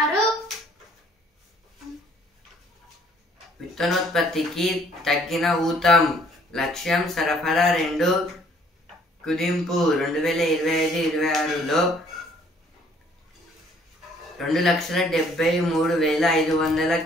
విత్తనోత్పత్తికి తగ్గిన ఊతం. లక్ష్యం సరఫరా 2 కుదింపు. 2025-26లో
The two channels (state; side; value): normal; both; correlation 0.60